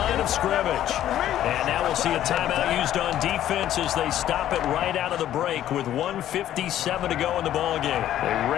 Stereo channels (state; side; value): quieter; right; 12.0 dB